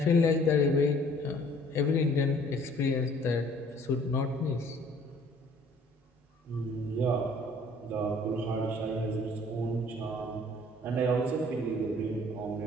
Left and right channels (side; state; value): both; normal; correlation 0.56